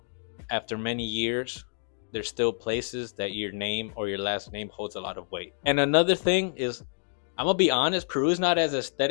after many years, there's still places that your name or your last name holds a lot of weight. And another thing is, I'm gonna be honest, Peru is not as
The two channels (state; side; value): silent; right; digital silence